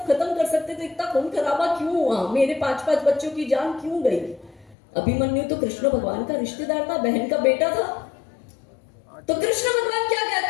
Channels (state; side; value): drops out; right; at 4.8 s